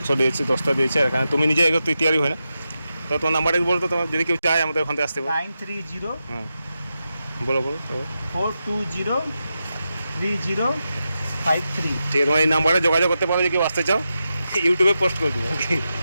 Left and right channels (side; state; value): both; inverted; correlation -0.89